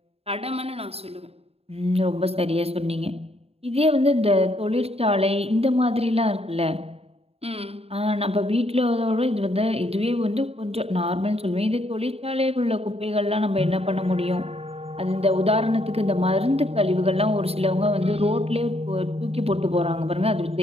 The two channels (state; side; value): late; left; 0.29 ms